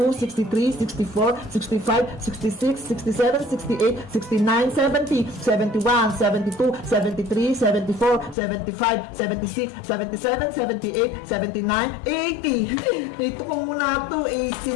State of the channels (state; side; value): drops out; right; at 8.3 s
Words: 63, 64, 65, 66, 67, 68, 69, 70, 71, 72, 73, 74, 75, 76, 77, 78, 79, 80. Ito ko muna to.